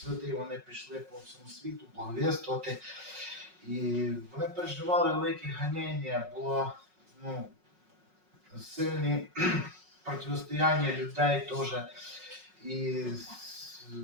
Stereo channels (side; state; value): left; late; 5.4 ms